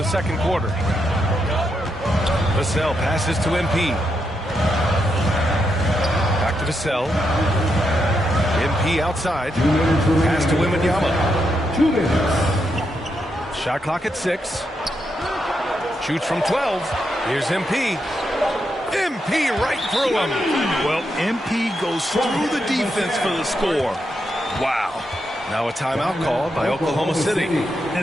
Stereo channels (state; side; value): normal; both; correlation 0.82